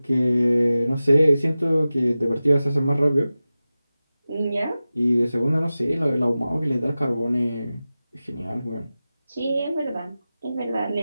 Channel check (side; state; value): both; inverted; correlation -0.95